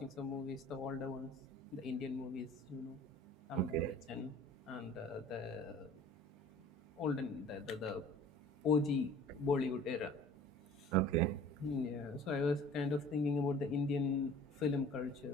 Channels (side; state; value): both; normal; correlation 0.46